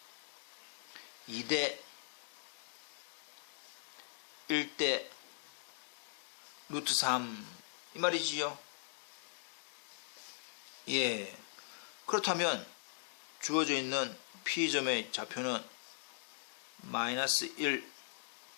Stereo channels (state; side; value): silent; right; digital silence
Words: 2대 1대 루트 3 이 말이지요. 예. 그렇다면 주어져 있는 P점의 좌표는 마이너스 1